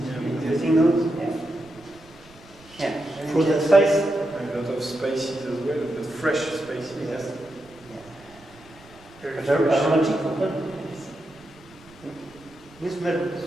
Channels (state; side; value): noise; right; rumble, 24 dB below the sound